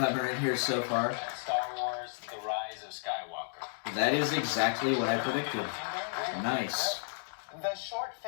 are in here so far. and Star Wars, The Rise of Skywalker. That is exactly what I predicted. Nice. the Short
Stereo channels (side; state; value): right; silent; digital silence